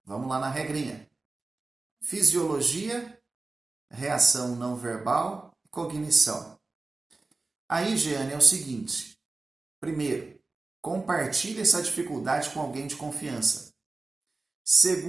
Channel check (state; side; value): quieter; left; 3.5 dB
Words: vamos lá na regrinha. Fisiologia, reação não verbal, cognição. Aí, Jeane, é o seguinte. Primeiro, compartilhe essa dificuldade com alguém de confiança.